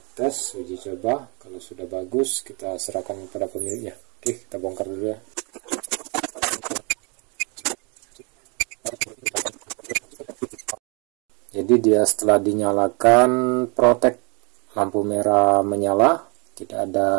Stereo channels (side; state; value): left; quieter; 32.9 dB